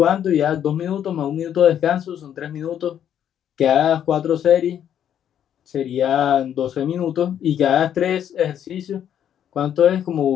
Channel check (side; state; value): right; quieter; 9.7 dB